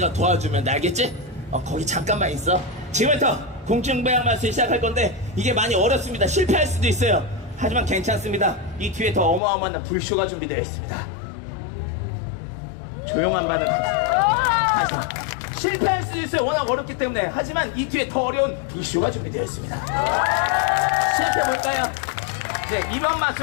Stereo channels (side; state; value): right; drops out; at 9.4 s